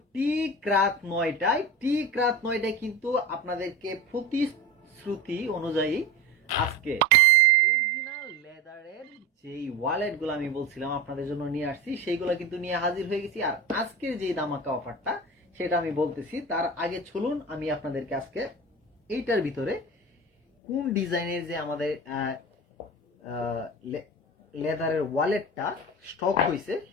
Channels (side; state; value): both; normal; correlation 0.27